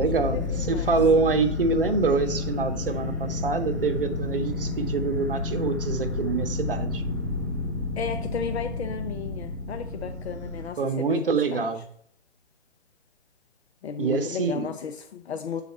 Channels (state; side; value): normal; both; correlation 0.07